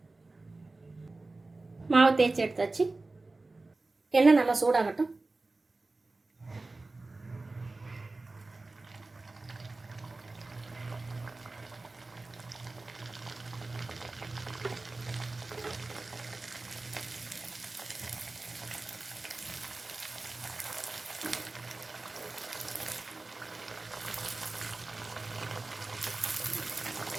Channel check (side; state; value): left; quieter; 3.3 dB